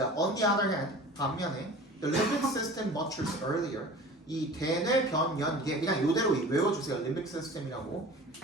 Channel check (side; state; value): both; normal; correlation 0.40